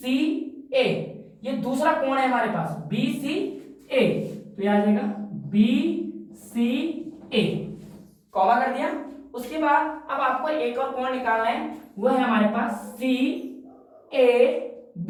ए, ये दूसरा कोण है हमारे पास बी सी ए, तो यह आ जाएगा बी सी ए, कॉमा कर दिया। उसके बाद अब आपको एक और कोण निकालना है, वो है हमारे पास सी ए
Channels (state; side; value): identical; both; correlation 1.00